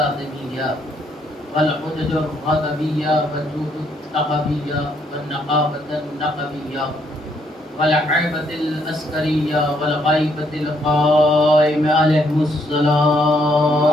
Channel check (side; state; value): both; normal; correlation 0.71